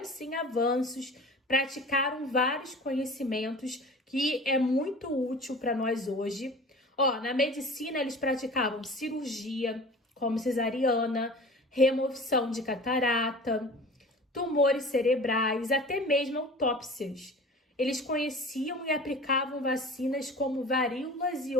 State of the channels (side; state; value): both; normal; correlation 0.40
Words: sim avanços, praticaram vários conhecimentos que é muito útil para nós hoje. Na medicina eles praticavam cirurgia, como cesariana, remoção de catarata, tumores cerebrais, até mesmo autópsias. Eles conheciam e aplicavam vacinas como varíolas e